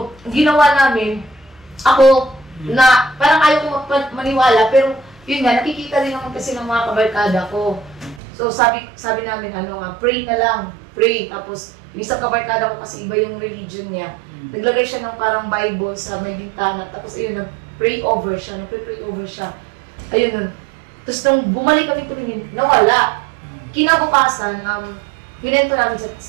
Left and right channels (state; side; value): drops out; left; at 8.2 s